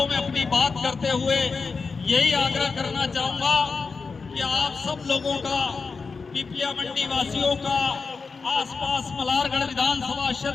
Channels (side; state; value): right; quieter; 4.7 dB